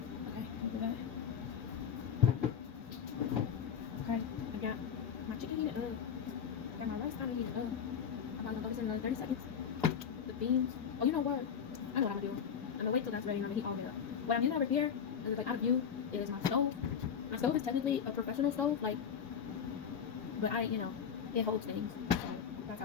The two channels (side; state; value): right; quieter; 7.6 dB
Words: okay. Okay, I got my chicken heated up. I got my rice kind of heated up. I'm probably going to throw this in another 30 seconds. The beans. Oh, you know what? I know what I'm going to do. I'm going to wait till that's ready and I'm going to heat all of it up. What I'm using over here, and it's like out of view, is my stove. My stove is technically a professional stove, like, but it holds things. So that's